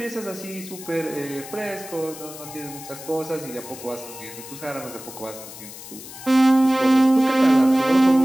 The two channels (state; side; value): noise; left; hiss, 14 dB below the sound